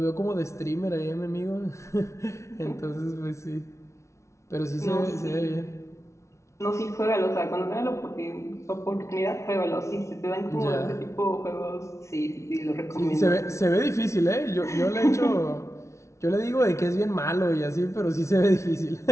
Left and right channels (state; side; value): late; right; 0.14 ms